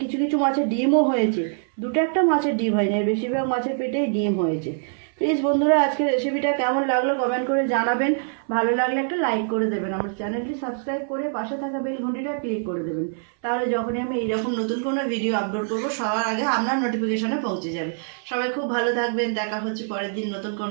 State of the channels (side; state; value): left; silent; 62 dB below the other